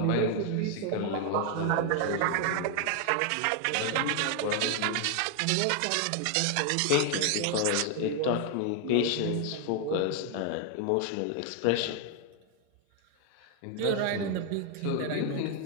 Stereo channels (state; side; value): different; both; correlation 0.01